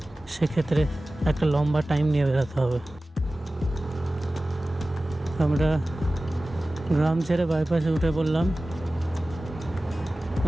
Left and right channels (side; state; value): both; normal; correlation 0.97